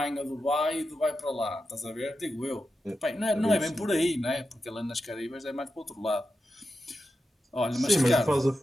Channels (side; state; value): both; normal; correlation 0.90